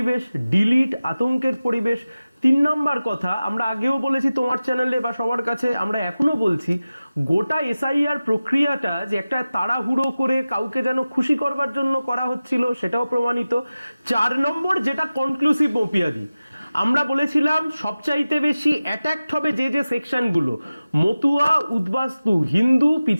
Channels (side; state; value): both; inverted; correlation -0.96